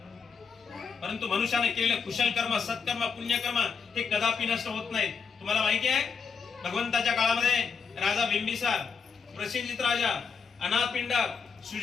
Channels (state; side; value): quieter; right; 5.9 dB